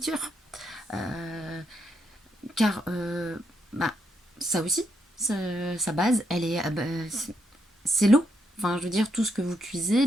Car ça aussi, sa base, elle est, c'est l'eau. Enfin, je veux dire, tout ce que vous cuisez,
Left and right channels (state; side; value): normal; both; correlation 0.79